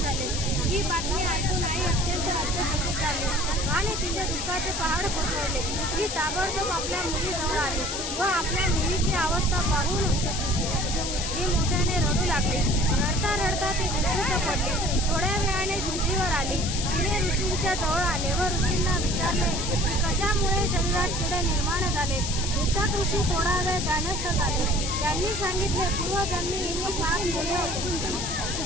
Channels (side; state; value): left; noise; hiss, 4 dB below the sound